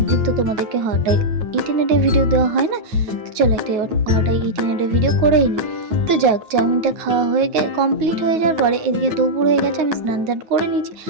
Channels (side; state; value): left; late; 9.3 ms